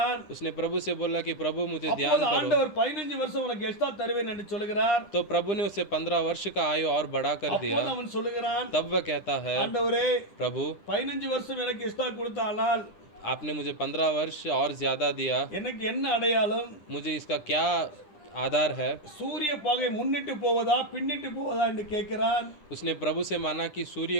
उसने प्रभु से बोला कि प्रभु मुझे ध्यान அப்போது करो। ஆண்டவர் 15 வருஷம் உனக்கு எக்ஸ்ட்ரா தருவேன் என்று சொல்லுகிறார். तो प्रभु ने उसे 15 वर्ष का आयु और बढ़ा कर दिया। அப்போது அவன் சொல்லுகிறான், तब वह कहता है, ஆண்டவரே प्रभु 15 வருஷம் எனக்கு எக்ஸ்ட்ரா கொடுத்தானால் आपने मुझे 15 वर्ष और ज्यादा दिया, எனக்கு என்ன அடையாளம்? मुझे इसका क्या आधार है? சூரிய பகை முன்னிட்டு போவதா பின்னிட்டு போவதா என்று கேட்கிறான். उसने प्रभु से माना कि सूर्य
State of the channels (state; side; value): late; right; 10 ms